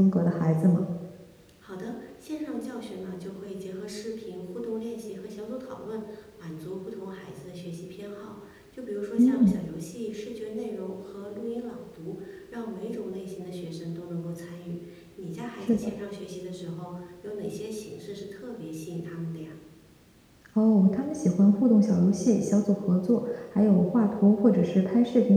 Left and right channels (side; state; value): both; identical; correlation 1.00